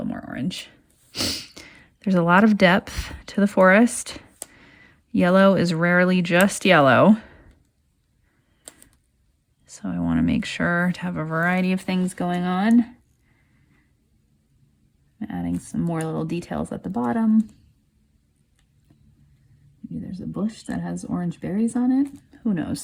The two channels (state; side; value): identical; both; correlation 1.00